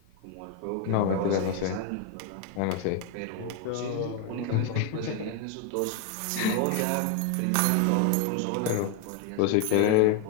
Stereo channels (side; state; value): both; different; correlation 0.01